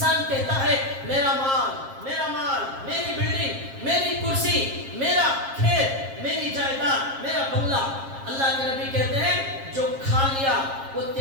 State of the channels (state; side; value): late; left; 7.4 ms